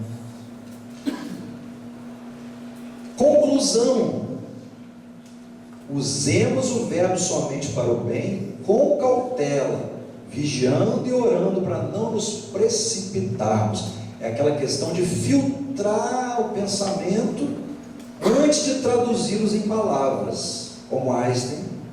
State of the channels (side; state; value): both; identical; correlation 1.00